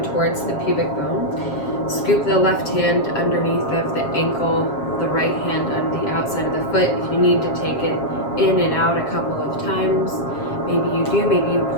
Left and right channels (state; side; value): late; right; 7.4 ms